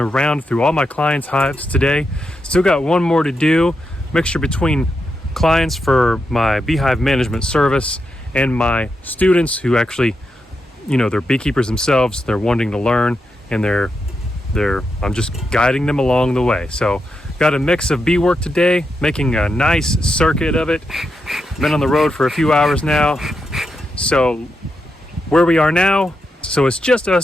round through all my clients' hives today. Still got one more to do. Mixture between clients for my beehive management service and my students who actually, they're beekeepers themselves. They're wanting to learn and I'm just guiding them along the way. So got a mix of bee work today, making a nice circuit of it. Been on the road for a few hours now. So where we are now, so it's just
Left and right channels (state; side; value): normal; both; correlation 0.85